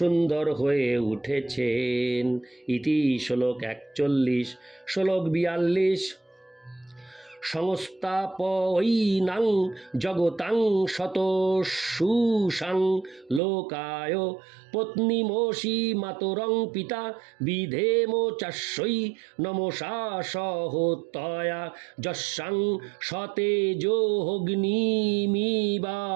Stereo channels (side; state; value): left; drops out; at 13.4 s